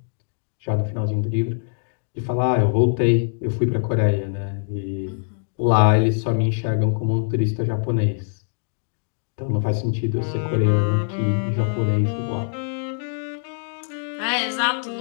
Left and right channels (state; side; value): silent; right; digital silence